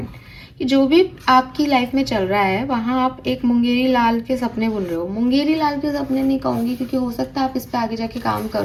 कि जो भी आपकी लाइफ में चल रहा है वहाँ आप एक मुंगेरी लाल के सपने बुन रहे हो। मुंगेरी लाल के सपने नहीं कहूँगी क्योंकि हो सकता है आप इस पर आगे जाके काम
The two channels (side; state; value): both; identical; correlation 1.00